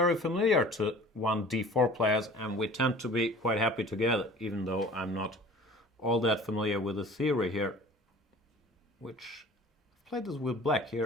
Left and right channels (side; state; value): both; normal; correlation 0.45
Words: familiar to 1d4 players, and we tend to be quite happy together, even though I'm not all that familiar with the theory here, which I've played this with black